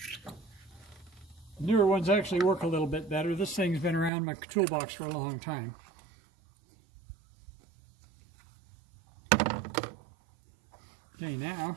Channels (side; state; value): left; drops out; at 4.1 s